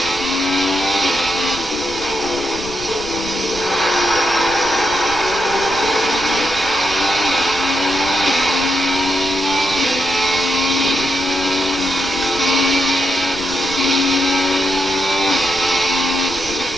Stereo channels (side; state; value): right; noise; rumble, 16 dB below the sound